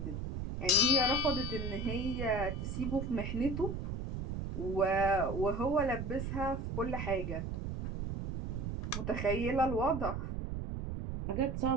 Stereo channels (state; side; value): noise; right; rumble, 4 dB below the sound